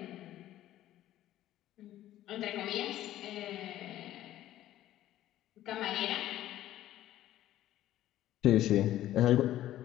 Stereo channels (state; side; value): quieter; right; 13.5 dB